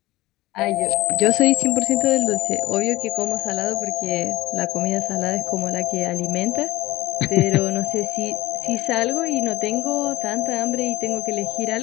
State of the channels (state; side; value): quieter; right; 18.5 dB